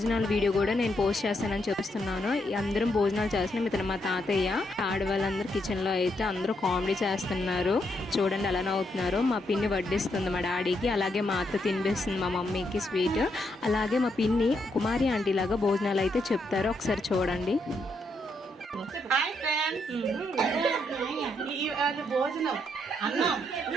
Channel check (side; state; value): both; normal; correlation 0.78